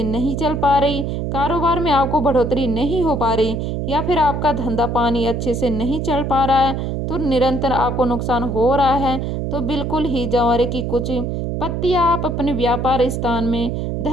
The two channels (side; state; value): right; noise; hum, 2 dB below the sound